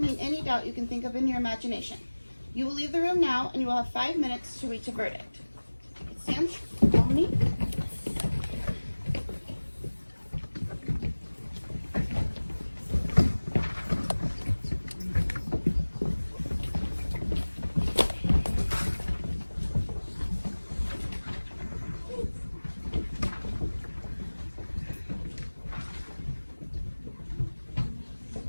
any doubt you can think of in your imagination. You will leave the room now and you will have 5 minutes to reach a verdict. Stand. Follow me.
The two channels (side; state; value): both; inverted; correlation -1.00